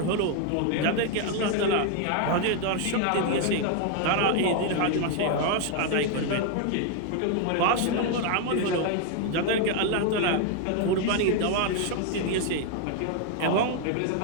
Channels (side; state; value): both; different; correlation 0.00